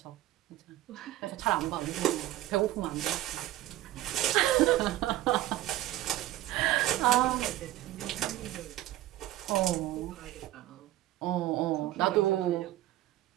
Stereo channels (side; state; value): left; quieter; 15.1 dB